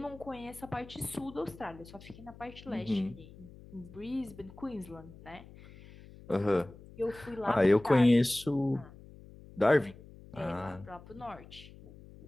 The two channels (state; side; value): noise; left; hum, 19 dB below the sound